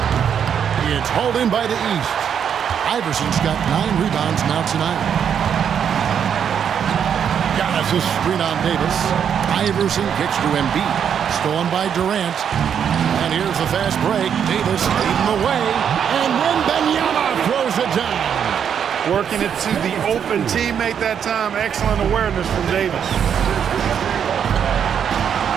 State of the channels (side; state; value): left; quieter; 8.1 dB